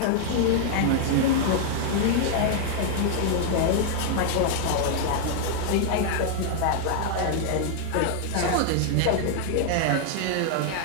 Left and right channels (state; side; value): different; both; correlation 0.00